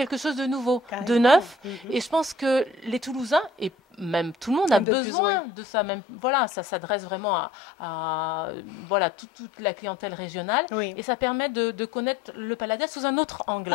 chose de nouveau, de neuf, et je pense que les Toulousains, et même tout le monde a besoin de ça. Même, voilà, ça s'adresse vraiment à voilà, toute la clientèle régionale. Et ça permet de connaître le Palladia sous un autre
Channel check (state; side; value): drops out; right; at 4.9 s